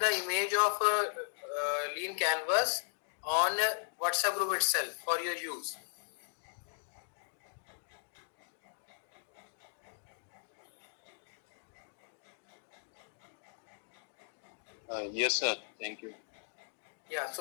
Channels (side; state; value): right; silent; digital silence